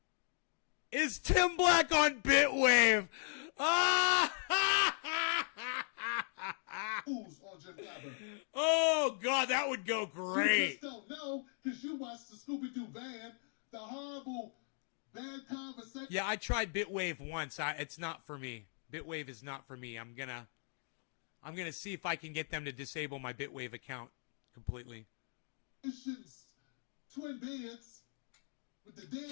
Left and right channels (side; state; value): right; silent; 52 dB below the other